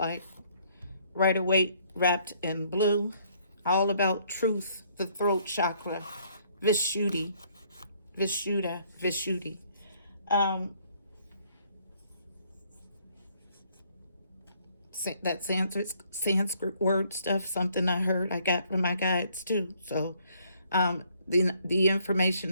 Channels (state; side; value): inverted; both; correlation -0.65